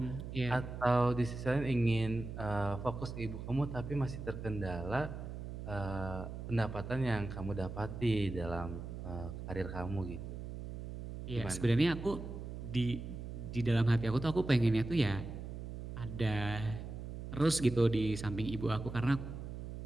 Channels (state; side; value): noise; right; hum, 8 dB below the sound